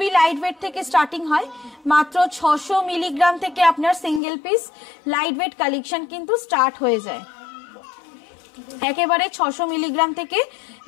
লাইট ওয়েট থেকে স্টার্টিং হয়, মাত্র 600 মিলিগ্রাম থেকে আপনার single piece light weight collection কিন্তু স্টার্ট হয়ে যায়। একেবারে 600 মিলিগ্রাম থেকে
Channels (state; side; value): drops out; right; at 4.2 s